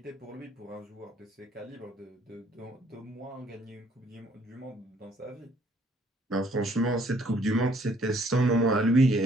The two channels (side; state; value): both; normal; correlation 0.63